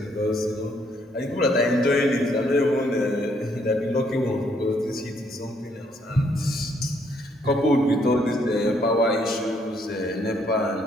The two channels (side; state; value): both; normal; correlation 0.70